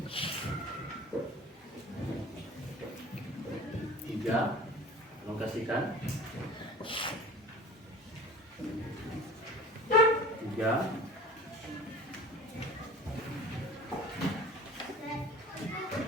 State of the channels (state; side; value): normal; both; correlation 0.41